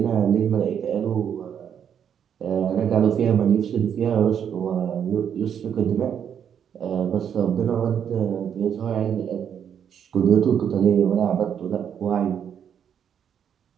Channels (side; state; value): left; quieter; 8.4 dB